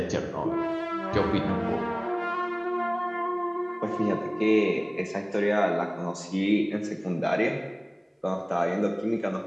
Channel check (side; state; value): both; identical; correlation 1.00